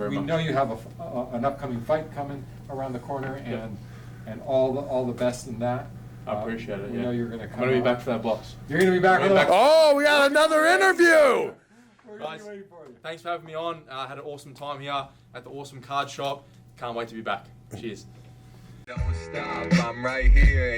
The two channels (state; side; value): identical; both; correlation 1.00